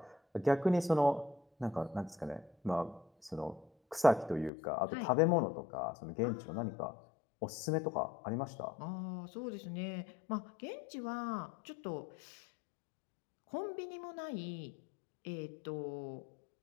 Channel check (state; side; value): drops out; right; at 4.5 s